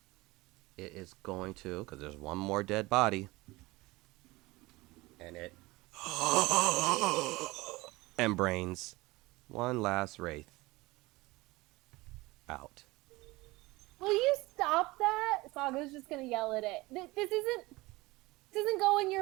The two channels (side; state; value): left; quieter; 21.4 dB